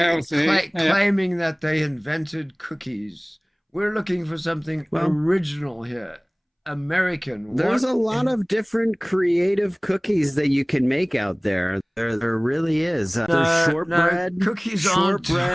yeah. Claiming that they invented cookies. We're looking for something Well- original here. American. There's What a lot of different creative cookies that you can make out there. There really is. There's No, shortbread, cookies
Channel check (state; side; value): identical; both; correlation 1.00